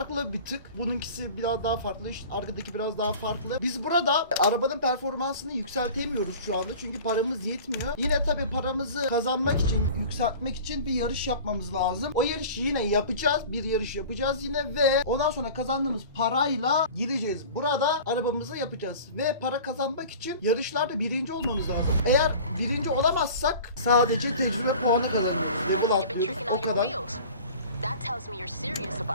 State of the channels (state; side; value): inverted; both; correlation -0.40